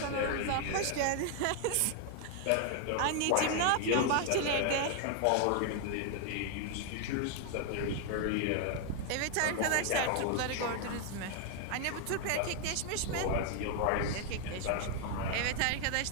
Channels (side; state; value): both; different; correlation 0.00